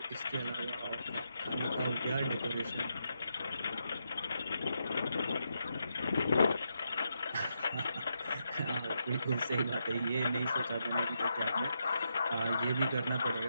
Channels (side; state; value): both; inverted; correlation -0.82